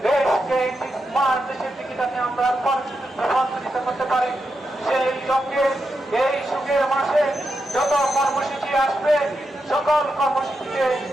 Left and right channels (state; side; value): normal; both; correlation 0.86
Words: দেশকে দেশের দিকে যাতে আমরা রূপান্তরিত করতে পারি, সেই লক্ষ্যে এই সুখের মাসে যত কর্মসূচি আসবে সকল কর্মসূচিতে